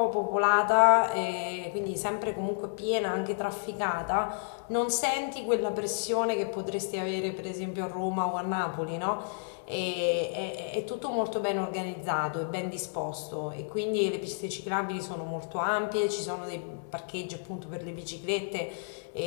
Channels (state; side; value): silent; right; digital silence